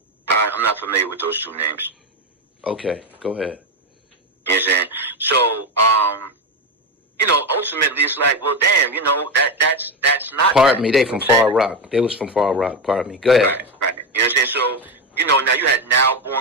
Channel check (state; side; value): normal; both; correlation 0.12